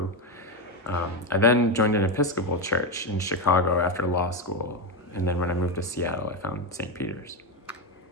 I then joined an Episcopal church in Chicago after law school, and then when I moved to Seattle, I found St. Peter's.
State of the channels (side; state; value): both; normal; correlation 0.10